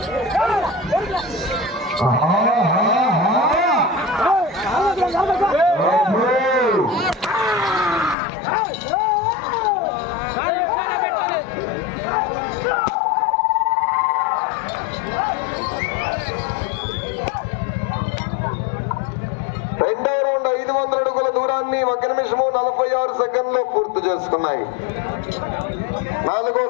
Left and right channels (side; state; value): right; drops out; at 8.2 s